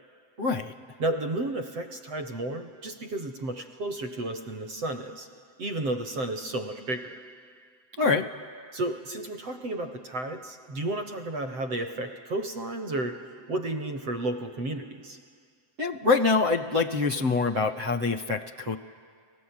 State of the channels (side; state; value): left; late; 7.8 ms